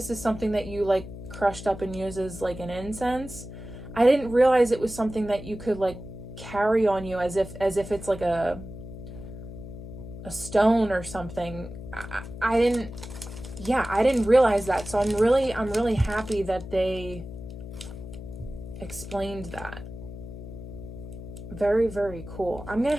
is something that you like crushed up and use as like an incense. I didn't realize it was something that you could like carry on you as if it's like a a stone or something. I didn't, yeah, I didn't realize that. So I'm really happy that they explained that. Very, very cool. I'm gonna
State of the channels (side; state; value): left; noise; hum, 12 dB below the sound